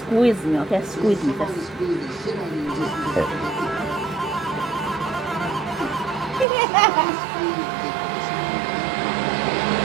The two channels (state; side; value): drops out; left; at 6.5 s